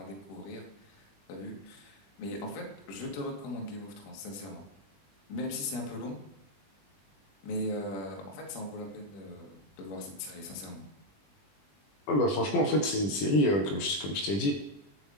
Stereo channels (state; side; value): late; right; 20 ms